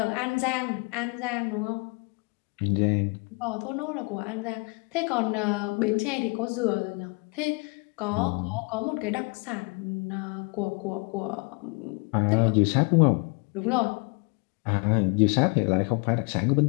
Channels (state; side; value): quieter; right; 31.6 dB